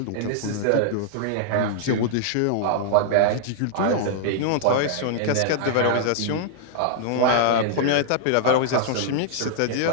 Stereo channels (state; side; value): different; both; correlation -0.01